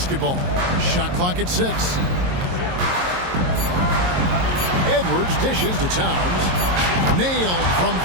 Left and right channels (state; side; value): late; left; 22 ms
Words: Shot clock at 6. Edwards dishes to Towns. Nailed from